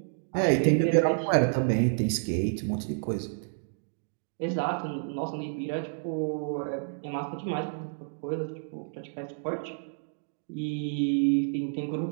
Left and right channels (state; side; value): silent; left; digital silence